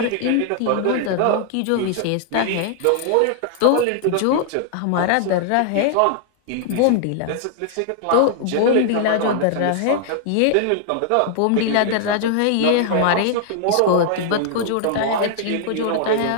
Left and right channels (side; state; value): both; different; correlation -0.01